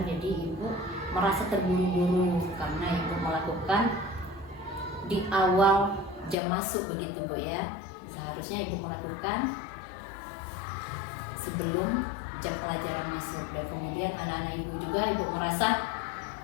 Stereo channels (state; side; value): drops out; right; at 6.4 s